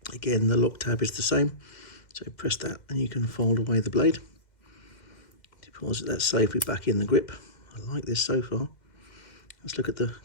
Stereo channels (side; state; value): right; late; 2.0 ms